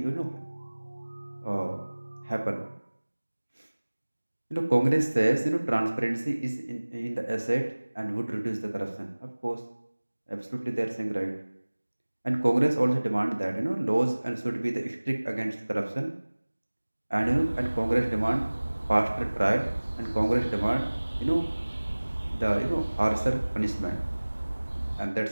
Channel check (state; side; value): inverted; both; correlation -1.00